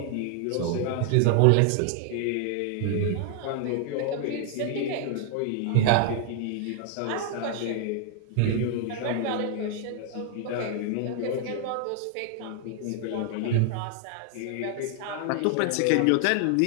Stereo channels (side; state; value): both; different; correlation 0.00